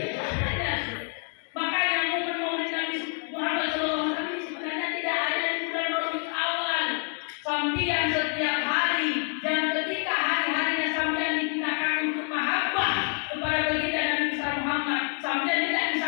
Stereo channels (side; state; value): right; quieter; 38.9 dB